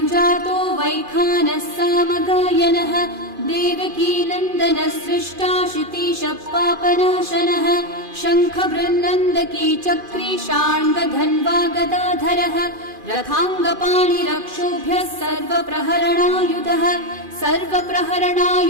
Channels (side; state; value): left; late; 2.4 ms